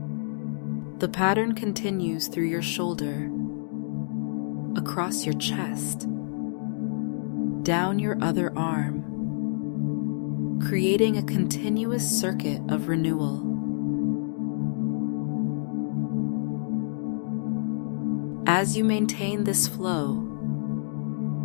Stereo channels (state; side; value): silent; right; digital silence